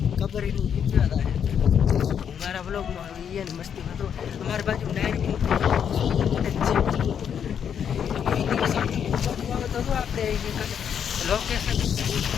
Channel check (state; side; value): quieter; right; 8.1 dB